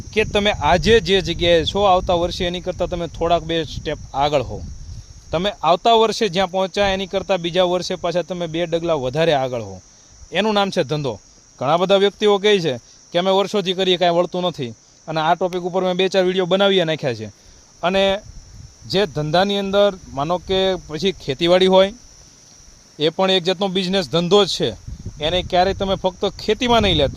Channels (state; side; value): identical; both; correlation 1.00